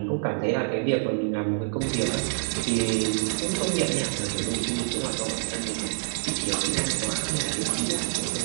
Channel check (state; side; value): silent; left; digital silence